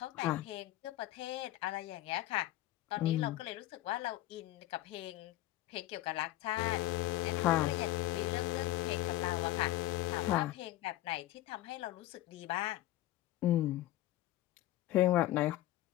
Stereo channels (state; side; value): quieter; right; 15.5 dB